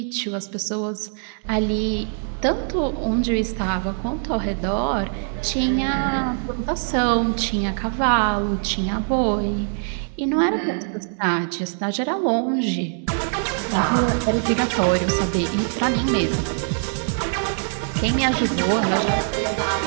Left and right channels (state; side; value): silent; left; 57 dB below the other